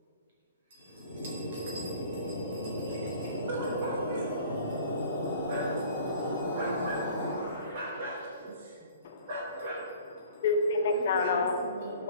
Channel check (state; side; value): inverted; both; correlation -0.48